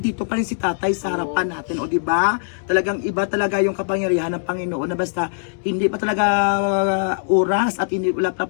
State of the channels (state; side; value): silent; right; digital silence